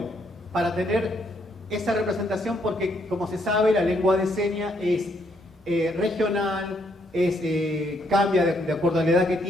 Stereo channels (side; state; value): both; normal; correlation 0.72